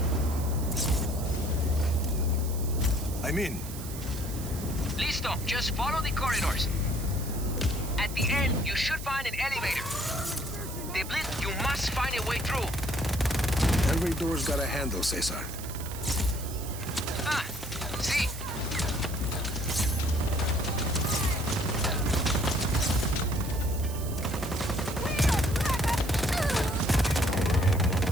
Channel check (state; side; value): noise; right; hiss, 12 dB below the sound